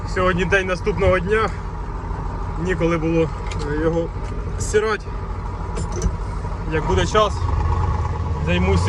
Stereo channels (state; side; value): identical; both; correlation 1.00